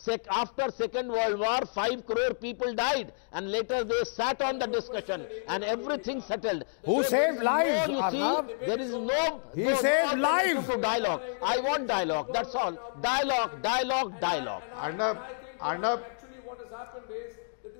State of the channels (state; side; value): silent; right; digital silence